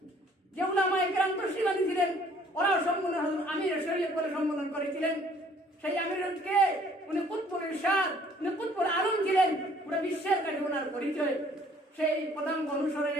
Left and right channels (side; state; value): both; normal; correlation 0.58